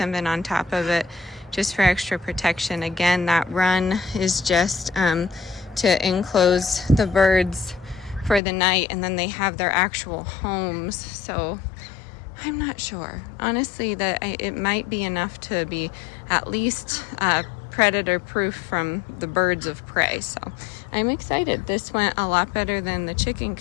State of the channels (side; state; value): right; drops out; at 8.4 s